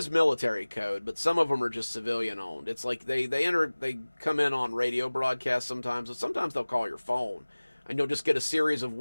military code, but some of them are just civilian owned. It's like they come in on radio broadcasts sometimes, but sometimes they'll call your phone and you'll just get a series of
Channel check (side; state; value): both; inverted; correlation -1.00